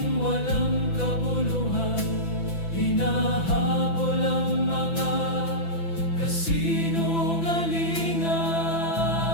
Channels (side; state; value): right; late; 6.0 ms